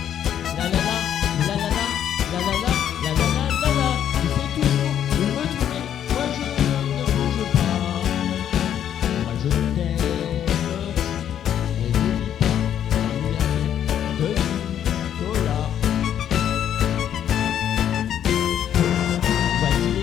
La la la, la la la,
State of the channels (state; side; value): quieter; right; 9.9 dB